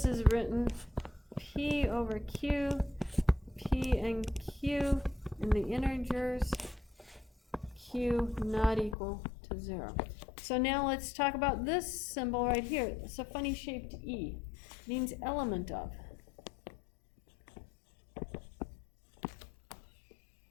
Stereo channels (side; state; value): right; drops out; at 9.0 s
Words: is written P over Q, P and Q in the integers, Q not equal to 0. So now let's talk about this symbol right here. It's a funny shaped E. Means element of.